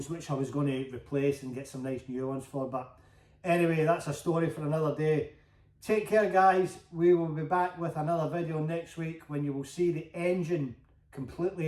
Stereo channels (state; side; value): identical; both; correlation 1.00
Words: which I was going to replace and get some nice new ones for. But anyway, that's a story for another day. Take care, guys. We will be back with another video next week when you will see the engine